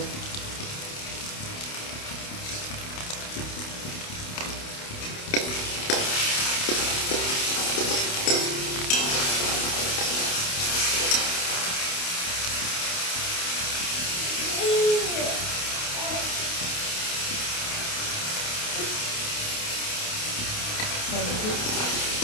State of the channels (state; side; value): late; right; 28 ms